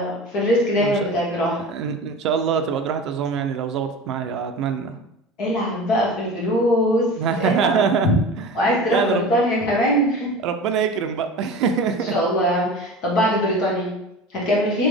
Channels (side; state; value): both; normal; correlation 0.34